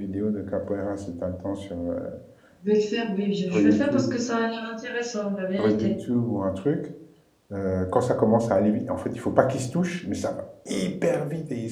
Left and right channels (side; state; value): both; identical; correlation 1.00